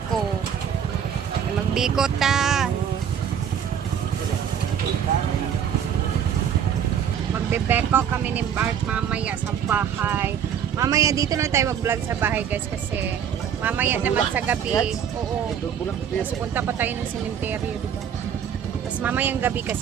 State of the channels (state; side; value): quieter; left; 8.4 dB